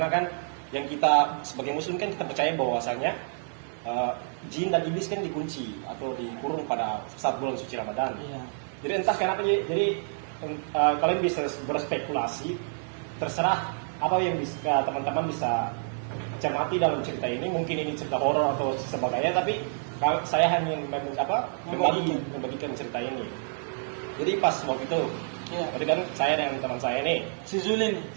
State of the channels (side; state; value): left; silent; digital silence